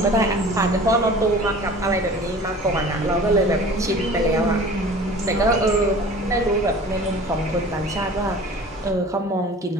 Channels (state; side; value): normal; both; correlation 0.43